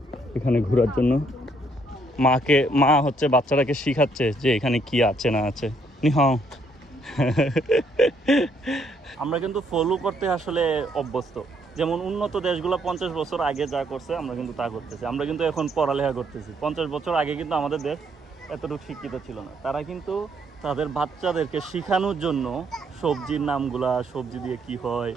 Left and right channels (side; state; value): both; normal; correlation 0.70